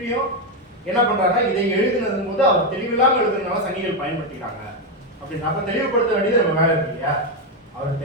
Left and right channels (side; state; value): both; normal; correlation 0.06